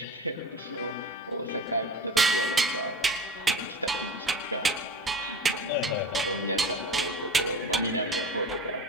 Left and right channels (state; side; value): normal; both; correlation 0.34